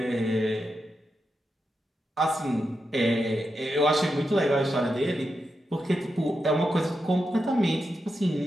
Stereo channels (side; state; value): both; normal; correlation 0.87